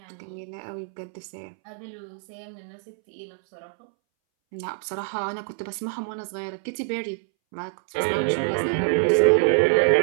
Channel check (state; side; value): silent; left; 61 dB below the other